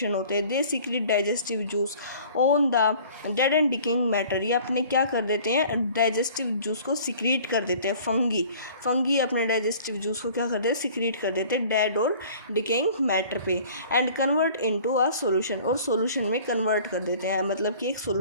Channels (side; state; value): both; inverted; correlation -0.49